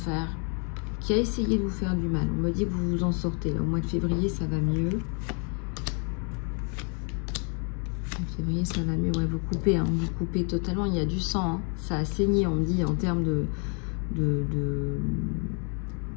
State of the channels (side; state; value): right; quieter; 38.8 dB